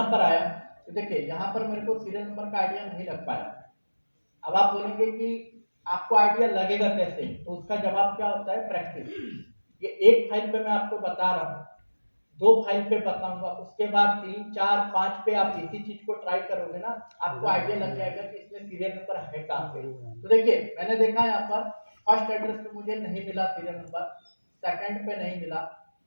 पर आया, तो देखिए यहाँ पर मेरे को सीरियल नंबर का आइडिया नहीं लग पाया। अब आप बोलेंगे कि आपको आइडिया लगेगा कैसे, तो उसका जवाब क्या होता है, प्रैक्टिस। ये एक फाइल पे मैं आपको बता रहा हूँ, 2 फाइल पे बताऊंगा, उसके बाद 3 4 5 पे आप इसी चीज को ट्राई करोगे ना, आपको आइडिया लग जाएगा कि इसमें सीरियल नंबर है कहाँ पे। तो देखिए मैंने देखा यहाँ पर फर्स्ट एड्रेस पे मुझे नहीं मिला सीरियल नंबर, सेकंड पे नहीं मिला,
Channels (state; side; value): inverted; both; correlation -1.00